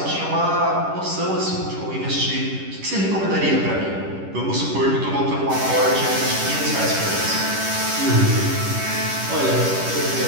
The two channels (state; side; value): late; left; 10 ms